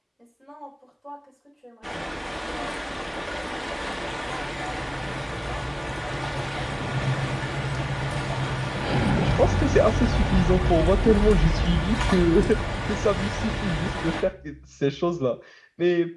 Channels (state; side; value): identical; both; correlation 1.00